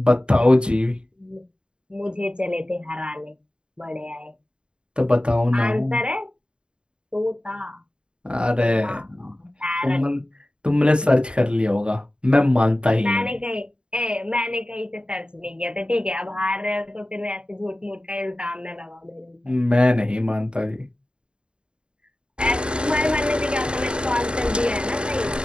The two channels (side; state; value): left; late; 0.052 ms